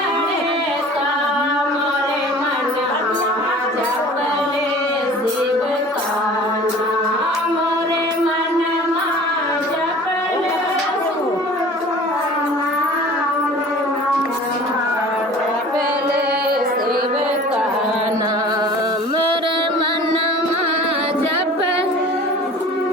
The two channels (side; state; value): both; normal; correlation 0.44